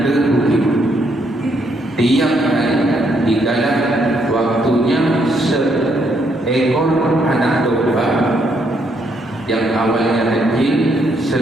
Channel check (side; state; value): both; normal; correlation 0.73